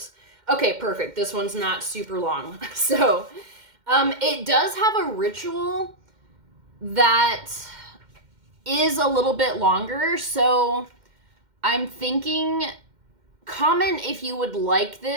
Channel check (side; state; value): left; late; 2.1 ms